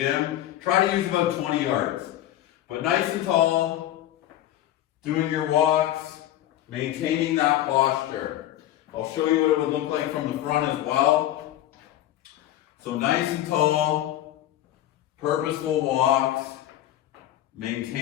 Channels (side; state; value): right; quieter; 13.3 dB